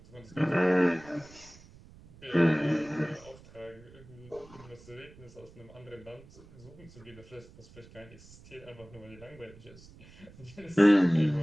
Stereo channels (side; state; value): right; noise; rumble, 22 dB below the sound